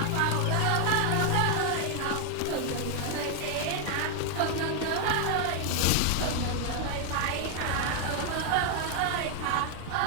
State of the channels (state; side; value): different; both; correlation 0.00